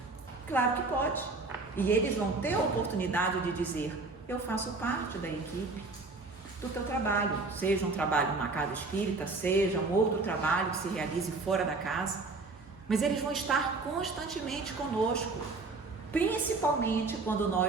Claro que pode. E eles vão ter a oportunidade de dizer: eu faço parte da equipe do teu trabalho, seja um trabalho numa casa espírita, seja um outro trabalho que se realize fora da casa, mas eles vão estar constantemente conosco, principalmente quando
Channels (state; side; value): quieter; left; 3.7 dB